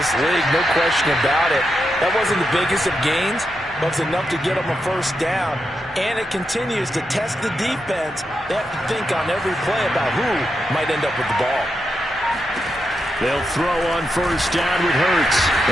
league, no question about it. That wasn't the biggest of gains, but it's enough to get them a first down. And it continues to test the defense. They have to think on every play about who might end up with the ball. They'll throw on first down with Hurts.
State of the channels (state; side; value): normal; both; correlation 0.85